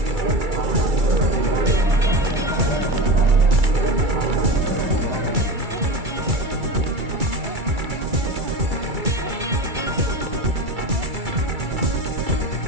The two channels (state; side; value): late; left; 2.3 ms